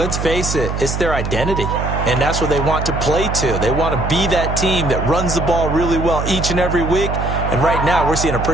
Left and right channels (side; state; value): right; noise; hum, 3 dB below the sound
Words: face it, it's their identity, and that's what they want to play to. They want to be that team that runs the ball really well each and every week, and right now we're seeing a